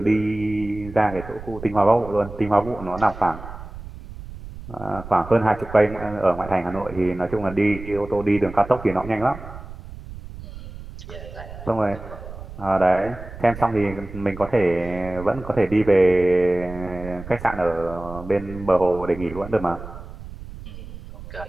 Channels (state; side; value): noise; right; rumble, 13 dB below the sound